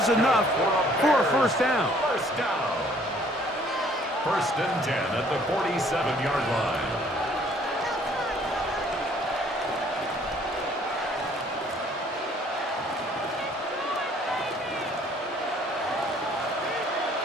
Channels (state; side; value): normal; both; correlation 0.59